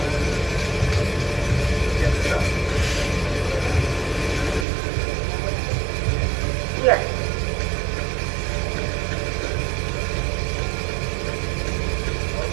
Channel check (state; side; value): drops out; left; at 4.7 s